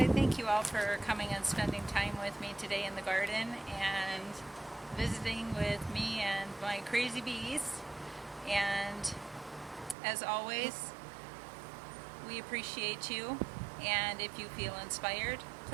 thank you all for coming and spending time with me today in the garden and visiting with me and my crazy bees. And as always, we appreciate you. And if you feel inspired,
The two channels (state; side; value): drops out; left; at 10.0 s